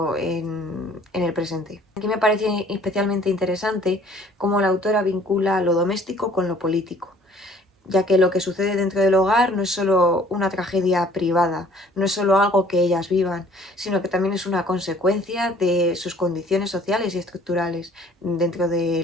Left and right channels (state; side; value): normal; both; correlation 0.55